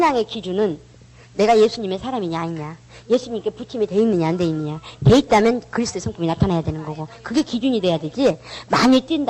기준은 내가 예수님의 사람이냐 아니냐, 예수님께 붙임이 돼 있느냐 안 돼 있느냐, 돼 있다면 그리스도의 성품이 나타나야 되는 거고 그게 기준이 돼야 되지. 많이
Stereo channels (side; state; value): both; identical; correlation 1.00